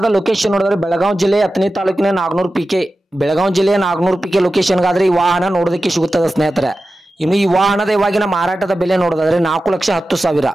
ಲೊಕೇಶನ್ ನೋಡಿದ್ರೆ ಬೆಳಗಾವಿ ಜಿಲ್ಲೆ ಹತ್ತನೇ ತಾಲೂಕಿನ ನಾಗನೂರ್ ಪಿಕೆ, ಬೆಳಗಾವಿ ಜಿಲ್ಲೆಯ ನಾಗನೂರ್ ಪಿಕೆ ಲೊಕೇಶನ್ಗಾದ್ರೆ ಈ ವಾಹನ ನೋಡೋದಕ್ಕೆ ಸಿಗುತ್ತದೆ ಸ್ನೇಹಿತರೆ. ಇನ್ನು ಈ ವಾಹನದ ಇವಾಗಿನ ಮಾರಾಟದ ಬೆಲೆ ನೋಡೋದಾದ್ರೆ 4,10,000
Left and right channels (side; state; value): both; normal; correlation 0.94